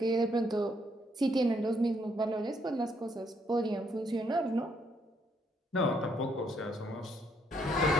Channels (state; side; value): normal; both; correlation 0.72